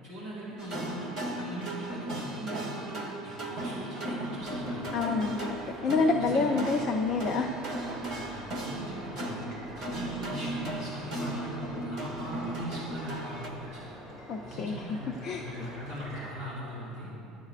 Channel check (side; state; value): both; normal; correlation 0.48